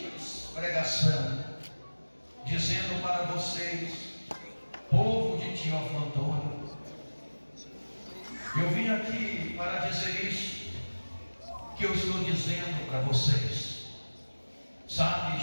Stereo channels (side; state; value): both; inverted; correlation -1.00